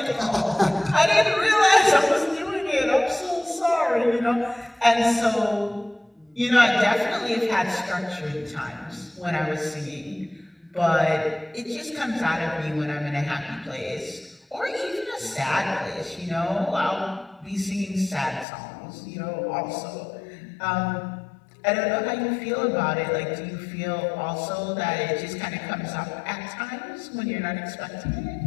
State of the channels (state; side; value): drops out; right; at 18.4 s